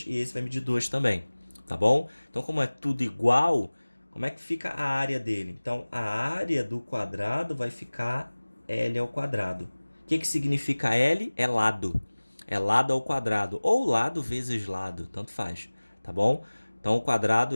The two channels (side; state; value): both; inverted; correlation -1.00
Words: e esse vai medir 2 também, tá bom? Então, como é tudo igual, como é que fica a área dele? Então, a área do quadrado vai ficar L ao quadrado. O que significa L? É lado. É lado ao quadrado, ou lado vezes lado, tanto faz, tá bom? Então, o quadrado